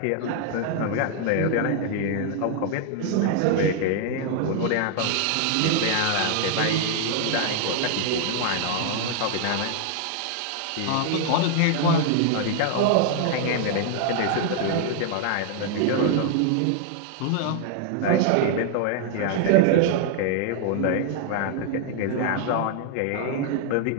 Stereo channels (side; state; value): both; different; correlation 0.00